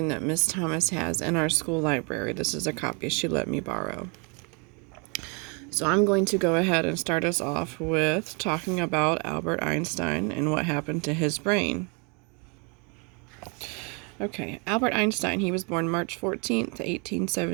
that Miss Thomas has in our school library. This is a copy she let me borrow. So I'm going to go ahead and start us off with talking about Albert Einstein and what happened to his brain. Okay, Albert Einstein, he was born March 14th,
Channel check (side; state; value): left; quieter; 32.9 dB